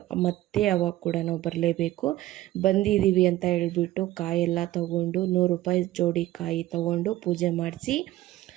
ಮತ್ತೆ ಅವಾಗ ಕೂಡ ನಾವು ಬರಲೇಬೇಕು. ಬಂದಿದ್ದೀವಿ ಅಂತ ಹೇಳ್ಬಿಟ್ಟು ಕಾಯೆಲ್ಲ ತೊಗೊಂಡು 100 ರೂಪಾಯಿ ಜೋಡಿ ಕಾಯಿ ತೊಗೊಂಡು ಪೂಜೆ ಮಾಡಿಸಿ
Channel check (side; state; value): left; quieter; 15.6 dB